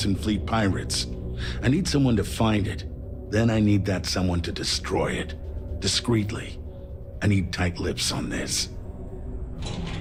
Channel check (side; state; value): both; identical; correlation 1.00